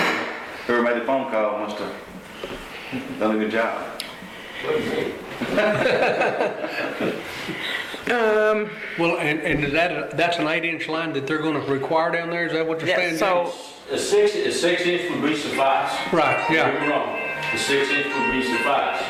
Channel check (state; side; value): identical; both; correlation 1.00